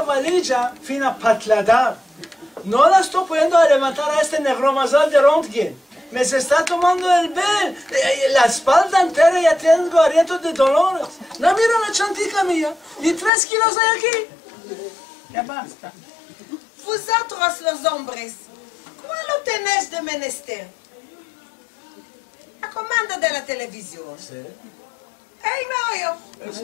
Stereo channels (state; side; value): drops out; right; at 13.3 s